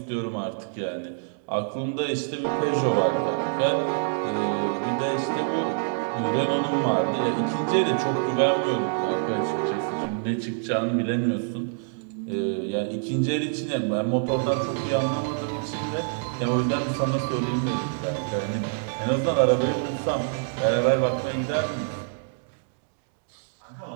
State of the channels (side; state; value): left; silent; digital silence